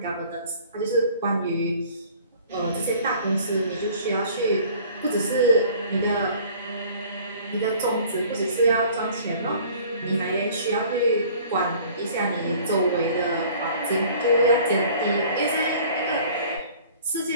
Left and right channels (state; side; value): inverted; both; correlation -0.51